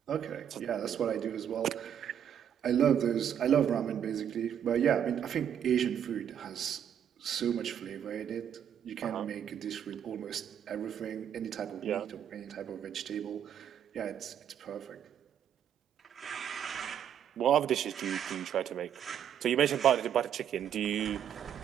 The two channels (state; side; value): quieter; left; 9.2 dB